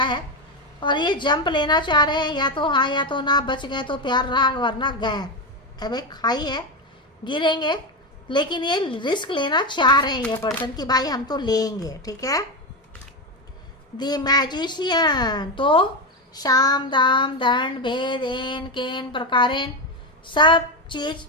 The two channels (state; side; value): normal; both; correlation 0.13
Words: है और ये जंप लेना चाह रहे हैं, या तो हाँ या तो ना, बच गए तो प्यार रहा, वरना गए। अबे खाई है, गिरेंगे, लेकिन ये रिस्क लेना चाह रहे हैं ये पर्सन कि भाई हम तो लेंगे, ठीक है। द मैजिशियन, तो शाम दाम दंड भेद एन केन प्रकारेण सब चीज़